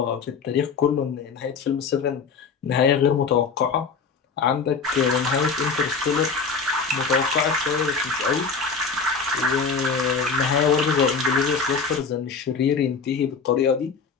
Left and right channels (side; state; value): right; quieter; 5.2 dB